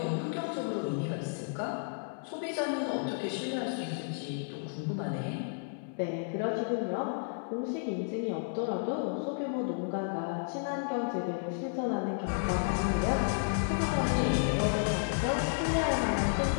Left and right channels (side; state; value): right; silent; 56 dB below the other